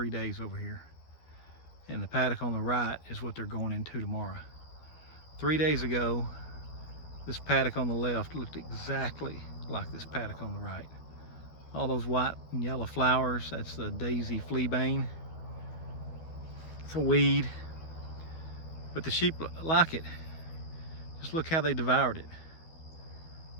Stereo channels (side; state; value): right; late; 12 ms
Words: days over here. And the paddock on the right is what they're going into tomorrow. 3 days ago, this paddock on the left looked exactly like this paddock on the right. All those white and yellow flowers, that's the daisy fleabane. It's a weed, but the sheep like it. Just look how they devoured it.